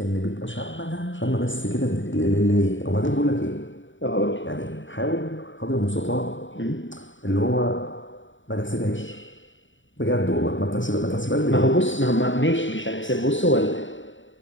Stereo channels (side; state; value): right; late; 0.55 ms